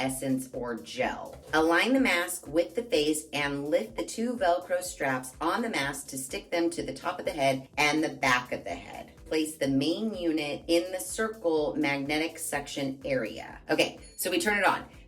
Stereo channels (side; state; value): both; identical; correlation 1.00